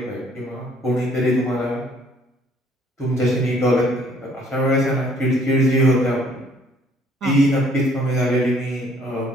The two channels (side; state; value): both; normal; correlation 0.61